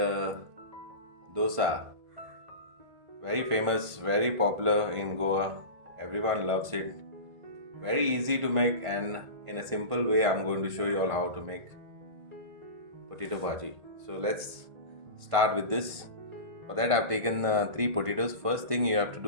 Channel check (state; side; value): late; left; 1.5 ms